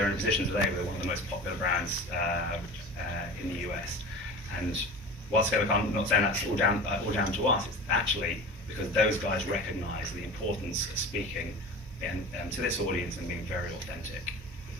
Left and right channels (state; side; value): normal; both; correlation 0.35